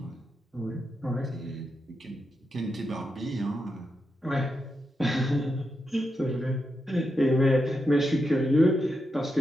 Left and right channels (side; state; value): both; normal; correlation 0.86